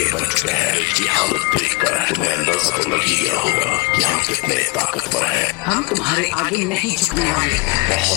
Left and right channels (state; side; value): quieter; right; 25.2 dB